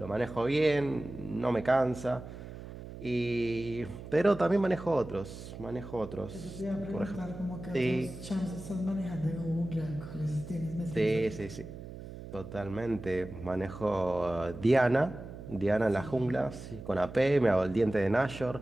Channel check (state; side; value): noise; right; hum, 12 dB below the sound